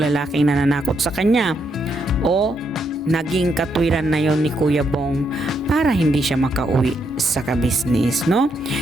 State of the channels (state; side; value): normal; both; correlation 0.78